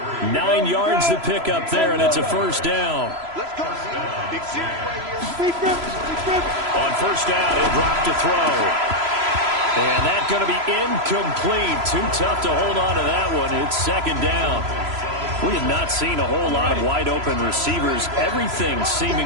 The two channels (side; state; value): left; late; 3.0 ms